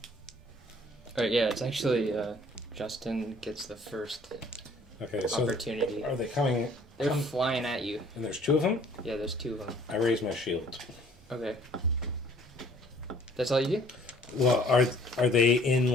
Alright, yeah, it's actually Justin gets the first Okay, so opportunity. are they coming? They're flying at you. And there's 2 of them? Yeah, there's 2 of them. I raise my shield. Okay. That's all you do? Well, are they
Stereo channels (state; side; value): normal; both; correlation 0.56